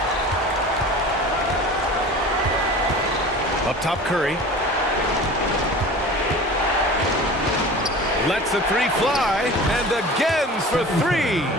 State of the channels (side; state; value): both; normal; correlation 0.39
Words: Up top, Curry. Lets the 3 fly, and again for 3.